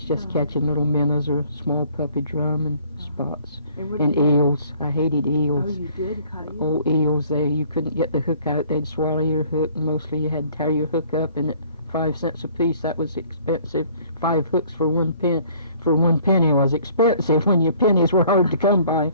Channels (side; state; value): both; inverted; correlation -0.56